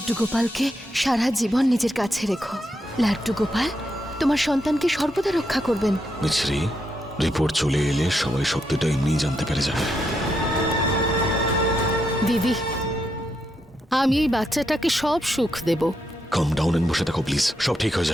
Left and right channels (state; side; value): normal; both; correlation 0.81